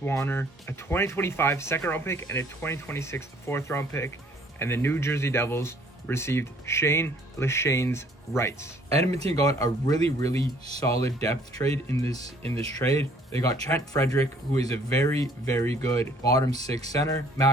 a 2025 second-round pick, and a 2026 fourth-round pick, and the New Jersey Devils received Shane Leshane's rights. Edmonton got a really solid depth trade in this trade. They got Trent Frederic, who is a very good bottom six center,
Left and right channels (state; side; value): normal; both; correlation 0.59